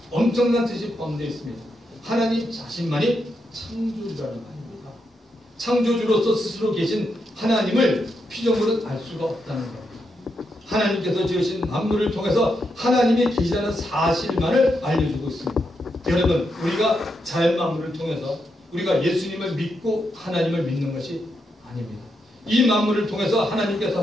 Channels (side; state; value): both; normal; correlation 0.82